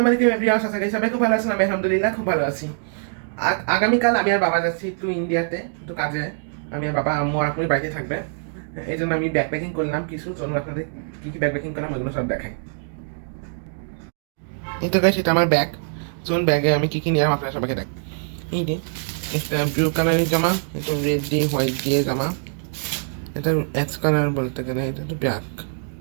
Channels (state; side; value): silent; left; digital silence